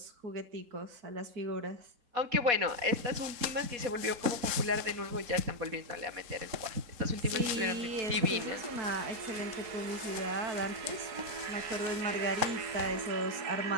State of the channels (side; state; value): left; late; 3.8 ms